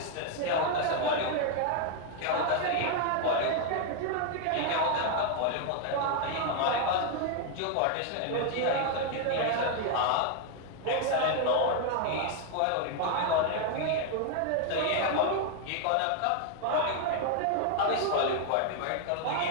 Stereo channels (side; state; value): both; different; correlation 0.00